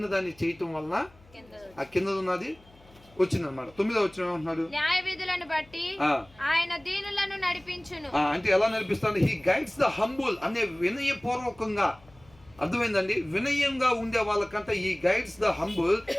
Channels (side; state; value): left; noise; hum, 27 dB below the sound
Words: దాన్ని చేయటం వలన ఆ కిందది ఉన్నది వచ్చిందనమాట. 9వ వచనం ఏమంటున్నాడు? న్యాయ విధులను బట్టి ఆయన దీనులను నడిపించును. అంటే ఎలా నడిపిస్తాడు? హీ గైడ్స్ ద హంబుల్ అనే వినయపూర్వకంగా. అర్థమైందండి? వినయంగా ఉండే వాళ్ళకంటే ఈ guides the humble